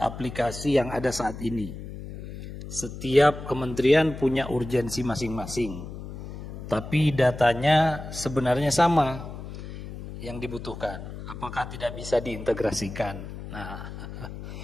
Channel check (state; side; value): noise; left; hum, 10 dB below the sound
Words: yang ada saat ini? Setiap kementerian punya urgensi masing-masing, tapi datanya sebenarnya sama yang dibutuhkan. Apakah tidak bisa diintegrasikan? Nah,